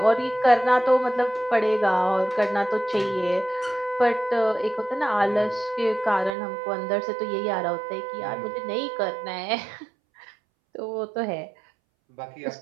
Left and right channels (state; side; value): drops out; left; at 6.3 s